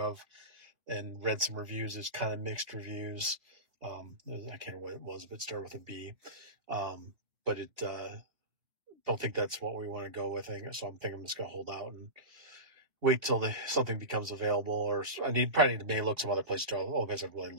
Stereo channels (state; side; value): late; left; 2.8 ms